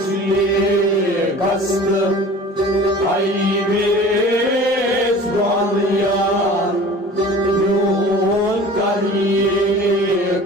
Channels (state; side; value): normal; both; correlation 0.42